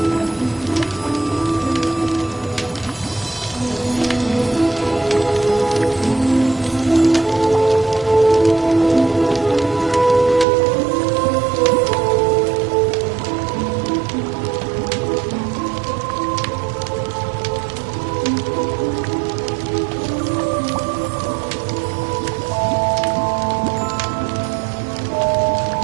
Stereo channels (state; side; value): drops out; left; at 10.5 s